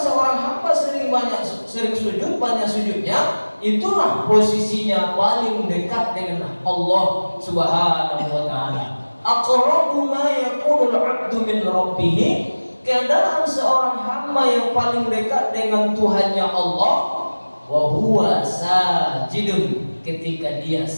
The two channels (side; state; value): both; inverted; correlation -1.00